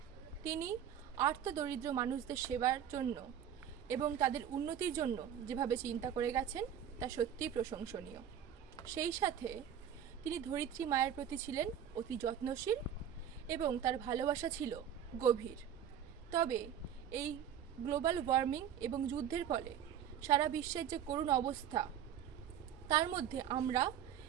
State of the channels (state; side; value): quieter; left; 9.3 dB